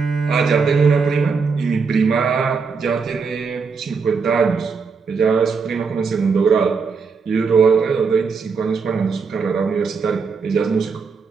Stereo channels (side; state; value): left; quieter; 5.2 dB